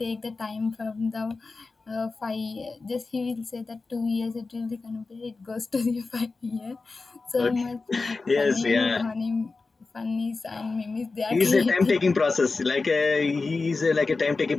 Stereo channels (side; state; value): right; quieter; 3.9 dB